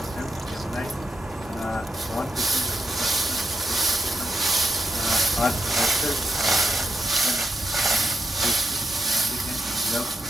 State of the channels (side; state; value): both; normal; correlation 0.83